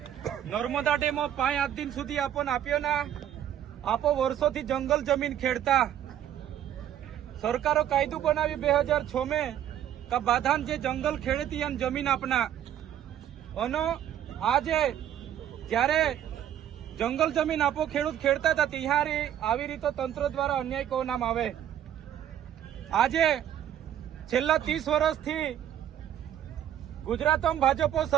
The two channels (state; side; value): quieter; left; 10.8 dB